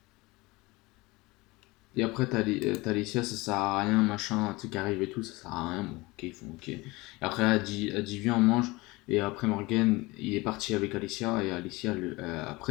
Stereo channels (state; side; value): quieter; right; 22.7 dB